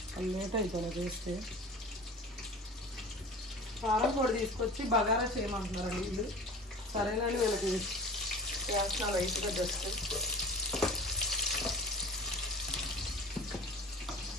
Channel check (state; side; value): normal; both; correlation 0.38